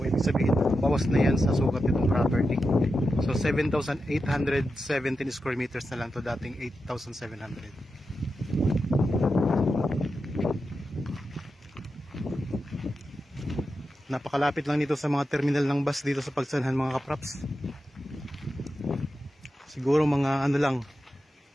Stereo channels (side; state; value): both; normal; correlation 0.89